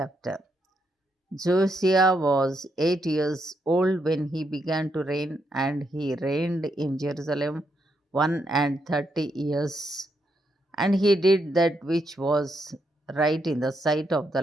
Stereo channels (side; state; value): both; normal; correlation 0.79